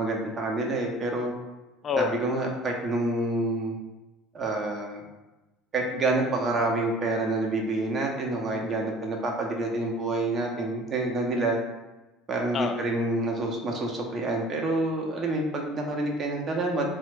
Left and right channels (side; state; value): both; normal; correlation 0.48